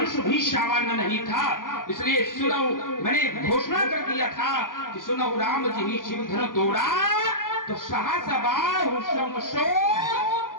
भी सामान्य नहीं था। इसलिए सुनो, मैंने घोषणा कर दिया था कि सुनो राम जी ही शिव धनु तोड़ा, तो सहसा बाहु समसो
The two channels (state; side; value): late; right; 0.90 ms